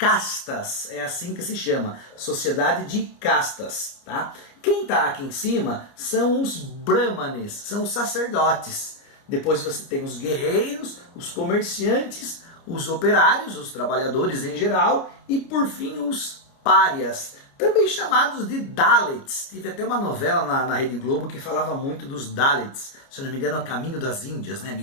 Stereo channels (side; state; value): right; late; 29 ms